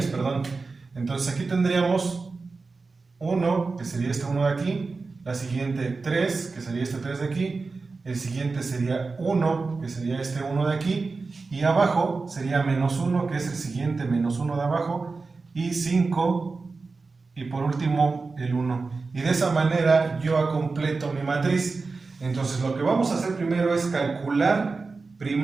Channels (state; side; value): quieter; left; 4.1 dB